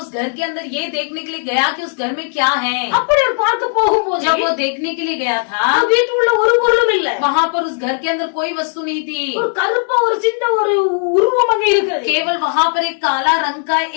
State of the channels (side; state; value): right; silent; 57 dB below the other